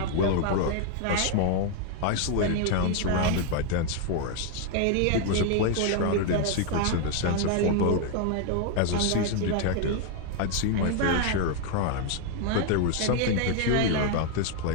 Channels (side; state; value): both; different; correlation 0.00